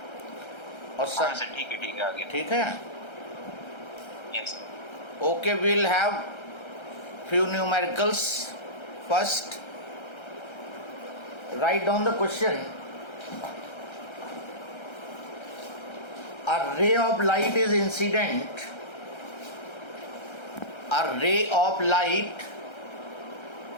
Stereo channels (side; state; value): right; late; 1.3 ms